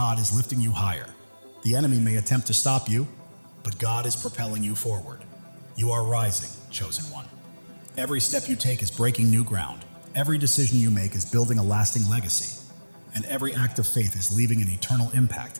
is lifting you higher. The enemy may attempt to stop you, but God is propelling you forward. You are rising, chosen one. Every step you take is breaking new ground. Every decision you make is building a lasting legacy. And every act of faith is leaving an eternal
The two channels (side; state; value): both; inverted; correlation -1.00